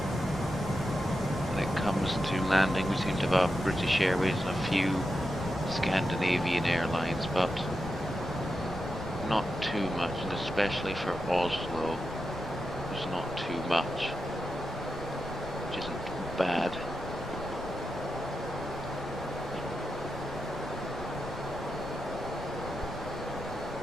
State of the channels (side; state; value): both; normal; correlation 0.88